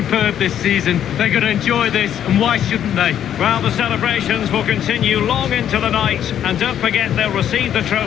this season. They're going to enjoy this, and why shouldn't they? Well, the celebrations will continue long into the night, and don't forget they'll receive the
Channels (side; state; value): right; quieter; 10.0 dB